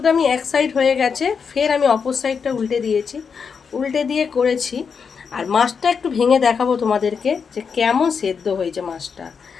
আমি এক সাইড হয়ে গেছে, ফের আমি অপর সাইডটা উল্টে দিয়েছি, উল্টে দিয়ে করেছি। আর মাছটা একটু ভেঙে দেখাবো তোমাদেরকে যে কেমন সেদ্ধ হয়েছে মাছটা।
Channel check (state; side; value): quieter; right; 6.0 dB